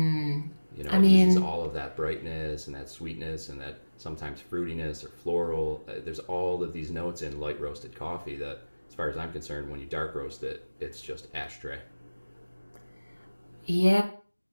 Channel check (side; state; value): both; inverted; correlation -1.00